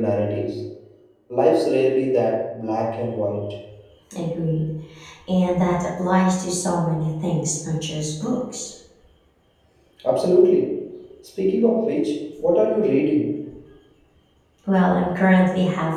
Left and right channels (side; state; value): both; identical; correlation 1.00